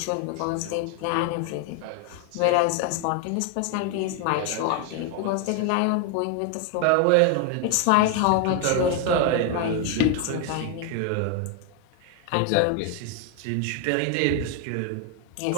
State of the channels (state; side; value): different; both; correlation 0.01